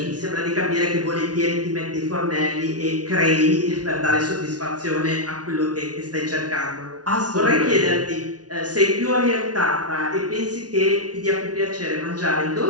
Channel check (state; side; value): late; left; 0.69 ms